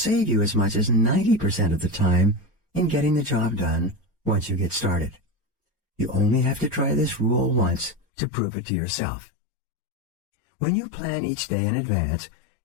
you as much as 90% of the time in getting the job done once you get started. You only have to try this rule once to prove it to yourself. When you plan each day in advance,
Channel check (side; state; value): right; drops out; at 8.0 s